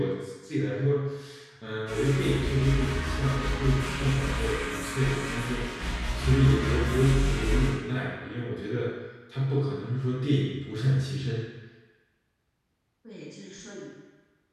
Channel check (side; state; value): both; identical; correlation 1.00